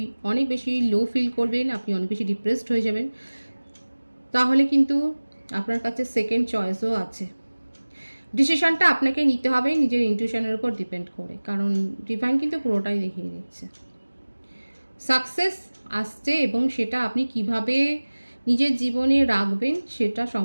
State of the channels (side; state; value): both; inverted; correlation -1.00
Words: অনেক বেশি লো ফিল করবেন, আপনি অনেক বেশি ডিপ্রেসড হয়ে যাবেন। তাহলে কিন্তু আপনার কাছে সেকেন্ড চয়েসও আছে। ডিসিশনটা আপনাকে নিতে হবে নিজের ইনটিউশনের উপর ডিপেন্ড করে, কারণ ডিভাইন কিন্তু পুরোটাই দেখিয়ে দিচ্ছে। সাকসেস আসছে, এবং সেটা আপনি কিভাবে নিজের জীবনে রাখবেন সেটা